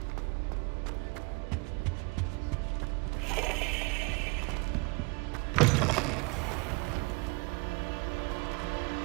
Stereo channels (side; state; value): left; quieter; 29.4 dB